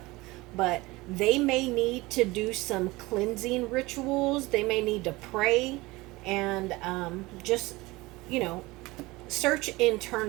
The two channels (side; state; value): left; quieter; 21.3 dB